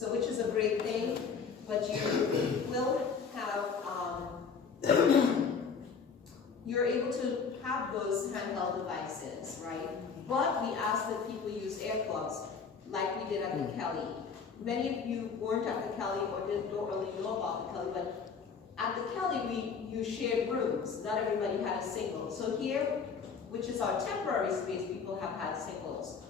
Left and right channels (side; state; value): right; quieter; 5.7 dB